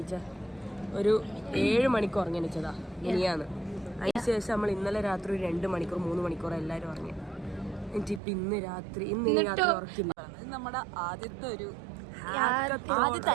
ഒരു 7 മണിക്ക് ഉറങ്ങണിച്ചതാ നീയാന്ന്. അതിനുശേഷം നമ്മൾ ഇന്നലെ രാത്രി ഒരു 2 മണിക്കൂർ 3 മണിക്കൂർ എല്ലാവരും ഉറങ്ങി. എന്നിട്ട് ഇന്ന് രാത്രി ഉറക്കില്ല. നമ്മുടെ ആദ്യത്തെ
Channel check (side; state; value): left; drops out; at 8.2 s